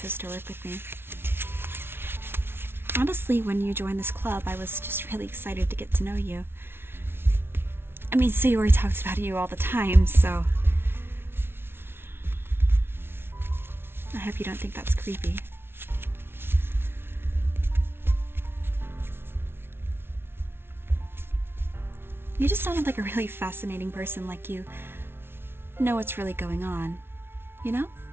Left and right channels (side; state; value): left; late; 0.11 ms